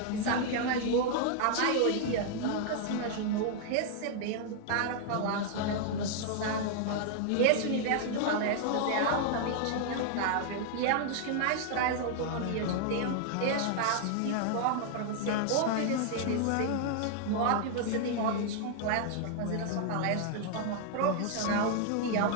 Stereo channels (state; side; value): different; both; correlation 0.00